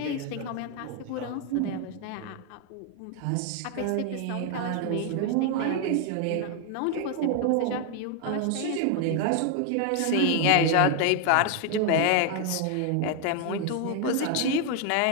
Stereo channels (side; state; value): both; different; correlation 0.00